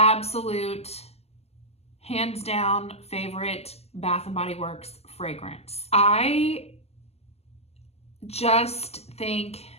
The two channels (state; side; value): late; right; 0.30 ms